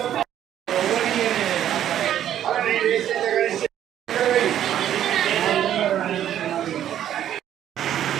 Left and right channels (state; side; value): quieter; left; 10.8 dB